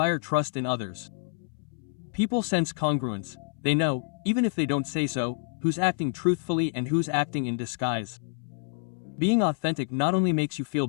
trust in others. People sense congruence. They know, even if they don't say so, who's acting truthfully and who's acting in disguise. Being authentic not only makes you feel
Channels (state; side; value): silent; right; 59 dB below the other